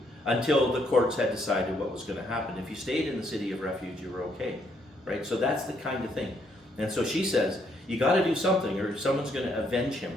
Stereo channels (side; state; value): both; normal; correlation 0.72